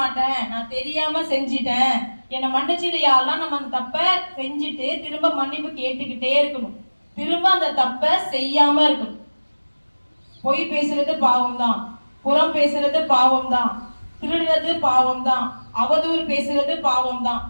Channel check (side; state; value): both; inverted; correlation -1.00